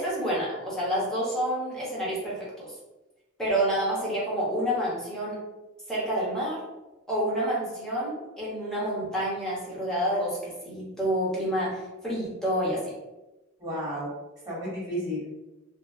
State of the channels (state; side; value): normal; both; correlation 0.12